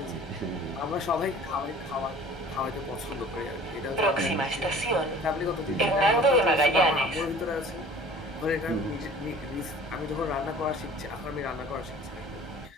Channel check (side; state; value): both; normal; correlation 0.46